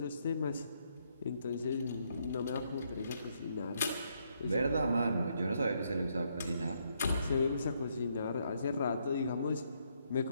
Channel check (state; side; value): inverted; both; correlation -0.75